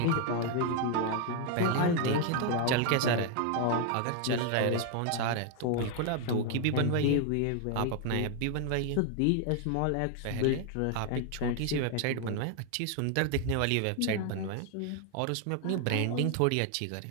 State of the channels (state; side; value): different; both; correlation 0.01